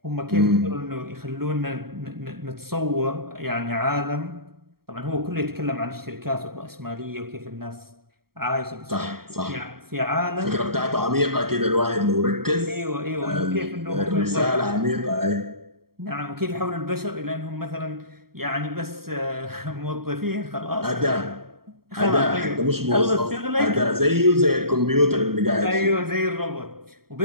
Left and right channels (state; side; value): late; left; 0.94 ms